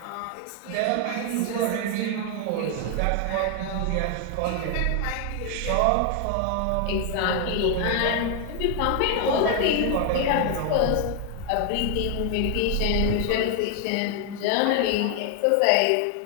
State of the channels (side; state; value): both; different; correlation 0.00